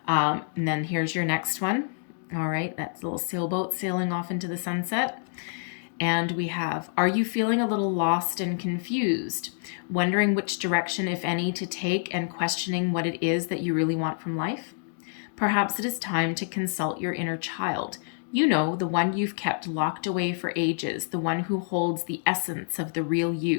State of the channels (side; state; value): right; silent; digital silence